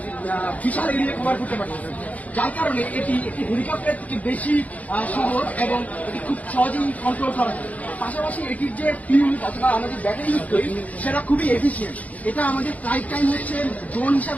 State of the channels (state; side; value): late; right; 0.073 ms